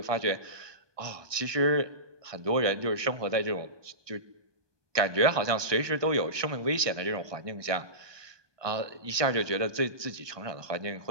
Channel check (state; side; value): late; left; 1.2 ms